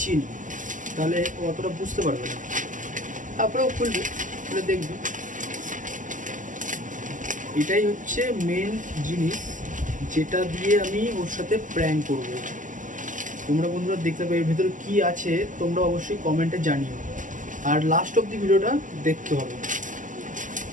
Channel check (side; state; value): left; late; 0.37 ms